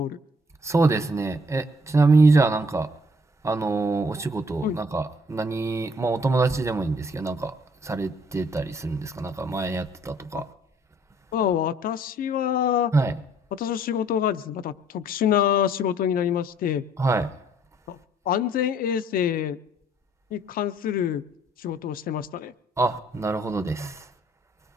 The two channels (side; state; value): both; normal; correlation 0.61